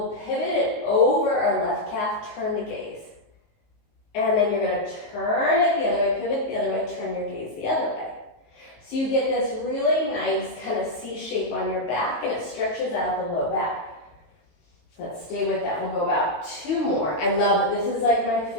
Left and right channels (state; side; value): late; right; 18 ms